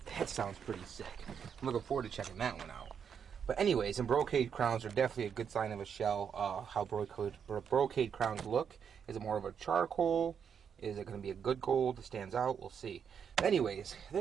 That sounds pretty sick. I'm looking forward to checking that one out. But anyways, and brocade crowns are definitely a good sign of a shell. How brocade crowns look. Is it more of a charcoal? Is it going to be a good gold? Stands out. We'll see. Anyways,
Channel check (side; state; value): left; quieter; 7.4 dB